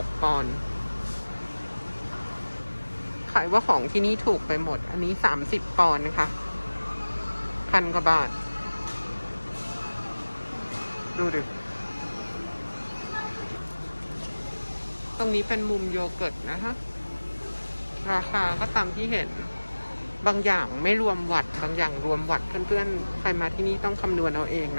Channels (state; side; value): inverted; both; correlation -1.00